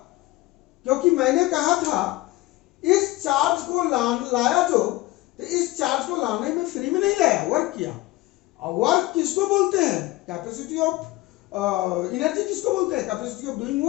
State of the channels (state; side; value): quieter; right; 19.0 dB